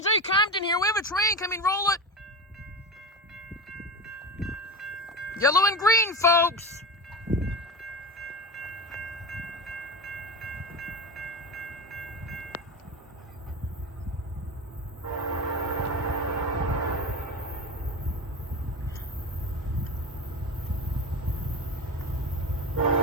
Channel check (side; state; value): both; normal; correlation 0.24